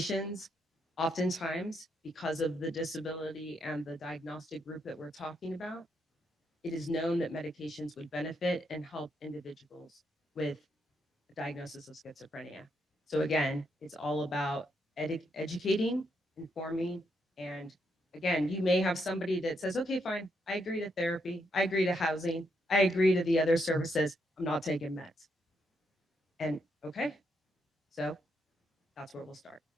oftentimes, because of the disability and the diagnostic group that we're talking about, it is known that medications would benefit and help individuals with a diagnosis of schizophrenia. So again, it's all about educating, informing, and again, you may have somebody that says, okay, fine, I agree to therapy, I agree to housing, I agree to the other services, I'm not taking meds. And okay, so that's where we'll start.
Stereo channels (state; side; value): normal; both; correlation 0.78